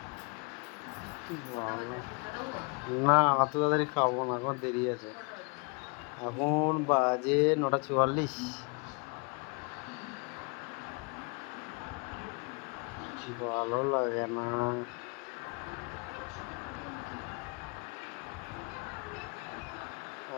না, অত তাড়াতাড়ি খাবো না, এখন দেরি আছে। এখন বাজে 9:44। ভালো লাগে না,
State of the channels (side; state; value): right; quieter; 33.5 dB